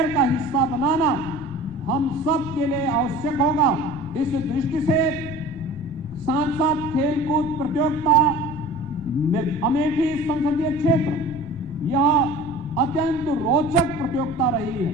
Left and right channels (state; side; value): noise; left; rumble, 18 dB below the sound